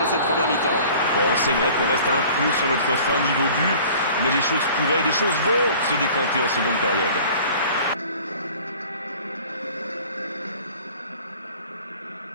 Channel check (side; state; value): both; inverted; correlation -0.47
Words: cette première mi-temps. Bon, c'est vrai qu'on reste un peu sur notre fin niveau but, mais les choses pourraient, les choses vont se décanter en seconde période.